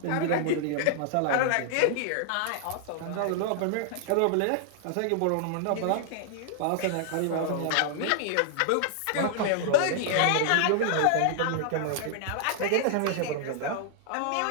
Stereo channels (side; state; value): both; different; correlation -0.01